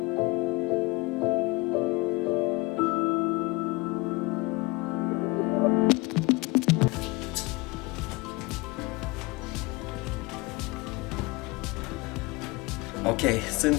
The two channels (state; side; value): quieter; right; 23.9 dB